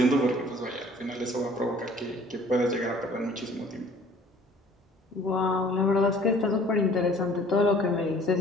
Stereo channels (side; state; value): both; normal; correlation 0.53